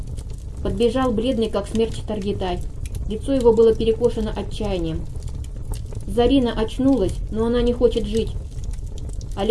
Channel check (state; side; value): identical; both; correlation 1.00